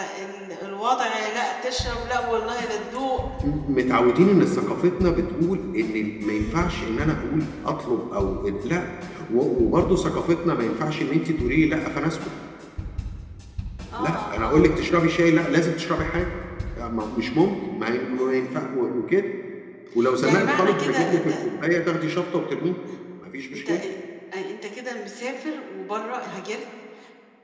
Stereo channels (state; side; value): identical; both; correlation 1.00